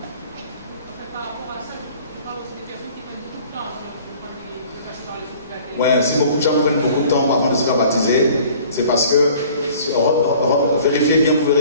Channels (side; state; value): both; inverted; correlation -0.51